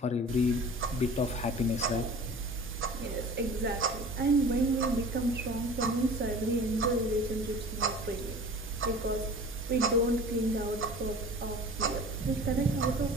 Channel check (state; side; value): normal; both; correlation 0.42